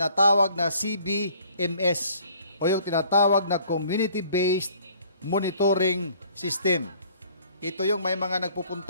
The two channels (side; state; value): both; inverted; correlation -0.57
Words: na CBMS o yung tinatawag na Community-Based Monitoring System. Ito yung may mga